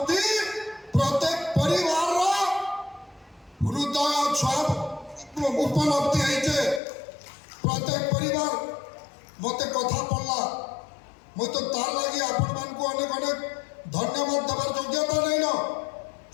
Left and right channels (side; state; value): right; drops out; at 6.8 s